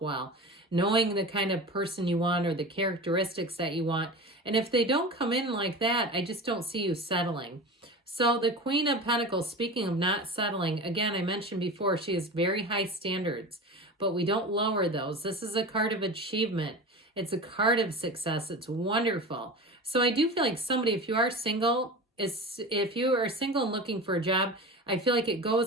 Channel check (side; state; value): both; normal; correlation 0.31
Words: well, knowing the kind of person you want or the characteristics that you want. And if they don't come in like that, I just don't see you settling. So the Queen of Pentacles, speaking of not settling, again, I mentioned before, she has very high standards, but we don't lower those. This is a card of achievement. It's a card of success. It's wonderful. So I do feel like somebody, if you are single, if you are single and looking for a job, I feel like it